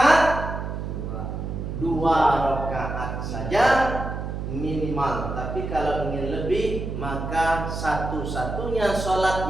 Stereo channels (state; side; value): noise; right; hum, 5 dB below the sound